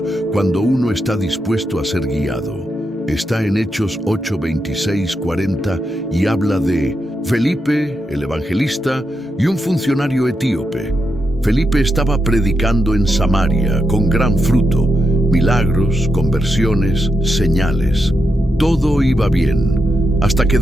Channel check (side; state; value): both; normal; correlation 0.85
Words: cuando uno está dispuesto a ser guiado. Está en Hechos 8, 26, 40 y habla de Felipe, el evangelista, y un funcionario etíope. Felipe estaba predicando en Samaria con gran fruto, milagros, conversiones, señales. Todo iba bien, hasta que